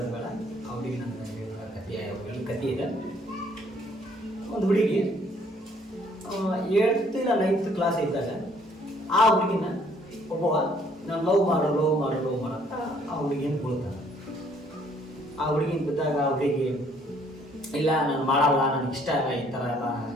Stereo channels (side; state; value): both; normal; correlation 0.63